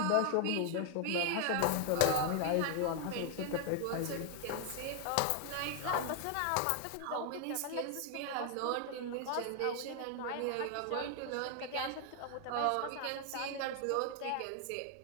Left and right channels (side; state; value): both; different; correlation 0.00